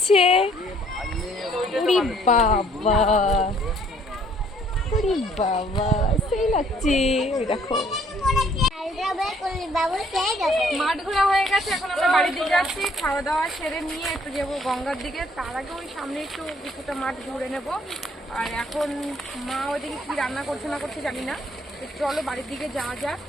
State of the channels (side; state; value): both; normal; correlation 0.62